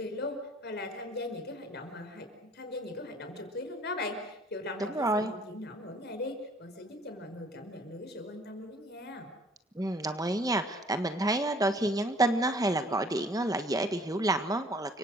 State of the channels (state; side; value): normal; both; correlation 0.56